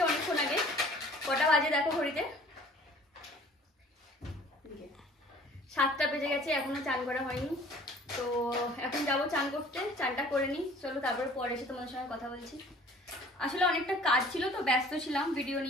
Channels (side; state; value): both; normal; correlation 0.51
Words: অনেকক্ষণ আগে। কটা বাজে দেখো ঘড়িতে, 7টা বেজে গেছে, এখনো চান করা হয়নি। তো এখন যাবো চান করতে, চানটা করে নিই। চলো, তারপরে পরে এসে তোমাদের সঙ্গে কথা বলছি। আসলে অনেকটা কাজ ছিল, তো ব্যস্ত ছিলাম ভিডিও